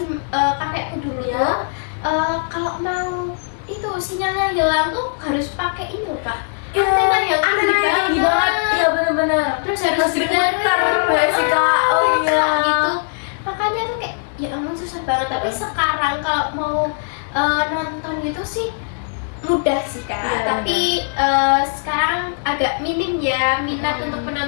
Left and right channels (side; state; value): right; silent; digital silence